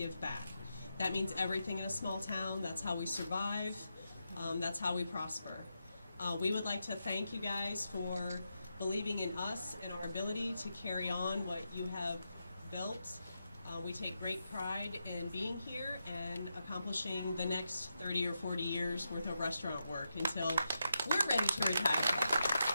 back. That means everything in a small town. That's how we survive. That's how we prosper. We would like to thank you guys for believing in us and our ability to carry on what you have built. We take great pride in being here and accomplishing the next 30 or 40 years worth of restaurant work until we're ready to retire.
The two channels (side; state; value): both; inverted; correlation -0.86